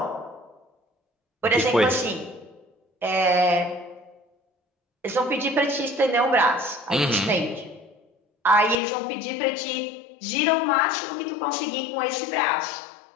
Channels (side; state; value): right; drops out; at 8.8 s